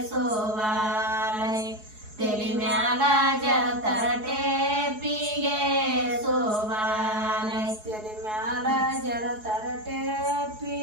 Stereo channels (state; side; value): late; left; 4.7 ms